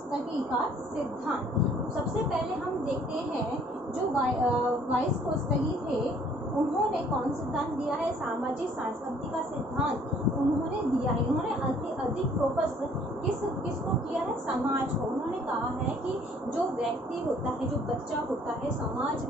का सिद्धांत। सबसे पहले हम देखते हैं जो वॉइस कोड स्टडी थे उन्होंने कौन सिद्धांत दिया है, सामाजिक सांस्कृतिक का सिद्धांत उन्होंने दिया है। उन्होंने अधिक फोकस किसको किया है, समाज को। उन्होंने कहा है कि जो व्यक्ति होता है, जो बच्चा होता है, समाज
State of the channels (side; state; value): both; normal; correlation 0.59